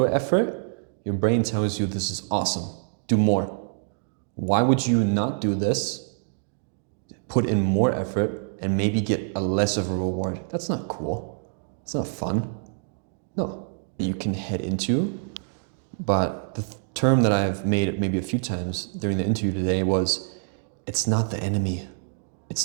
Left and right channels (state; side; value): silent; left; 61 dB below the other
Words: effort, your brain tells you this is awesome, do more. Why would you not do this, put in more effort, and maybe get a less of a reward? That's not cool. It's not fun. No. You can head into, but the term that I've made maybe a few times during the interview today was, it's not the enemy.